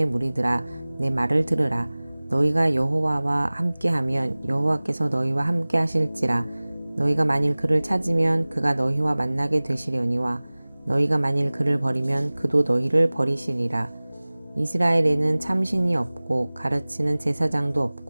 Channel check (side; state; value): both; inverted; correlation -1.00